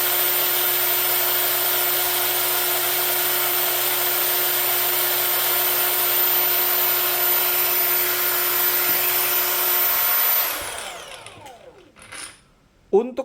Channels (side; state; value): both; identical; correlation 1.00